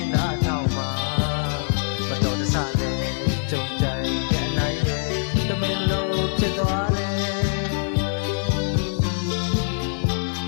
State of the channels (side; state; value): right; silent; 63 dB below the other